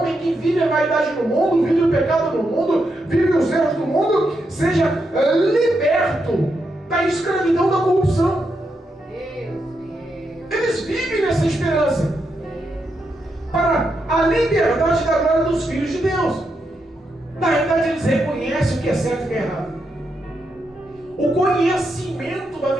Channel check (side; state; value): both; normal; correlation 0.83